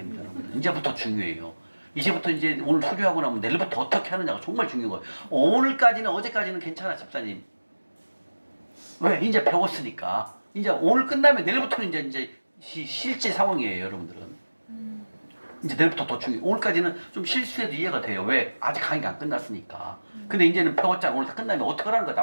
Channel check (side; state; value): both; inverted; correlation -1.00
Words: 여러분들. 이제부터 중요해요. 이제부터 이제 오늘 수료하고 나면 내일부터 어떻게 하느냐가 정말 중요한 거예요. 오늘까지는 어제까지는 괜찮아, 집사님. 왜? 이제 배웠으니까. 이제 오늘 끝나면 내일부터는 이제 실제 상황이에요, 여러분들은. 이제 내일부터 더 중요해요. 오늘까지는 좀 실수해도 이해가 돼요. 왜? 아직 강의가 안 끝났으니까. 근데 이제는 배웠잖아. 오늘 다 끝나면 어떻게 하라는 거